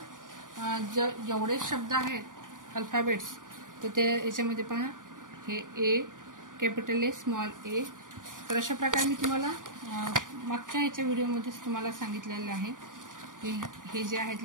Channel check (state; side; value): late; left; 0.88 ms